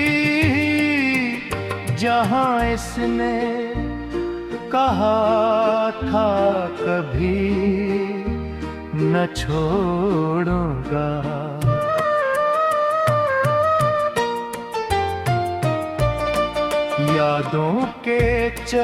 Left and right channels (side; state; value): both; identical; correlation 1.00